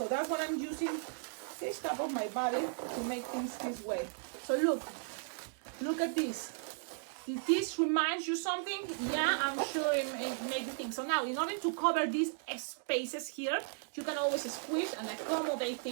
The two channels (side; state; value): left; silent; digital silence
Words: that's what I'm using this top of my body to make things this way. So look at this. If this reminds you something, yeah, I'm sure it makes you think. So now, in order to cover these spaces here, you can always squish and accommodate